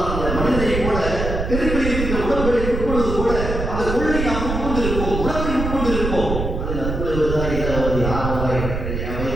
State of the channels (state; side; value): noise; right; rumble, 3 dB below the sound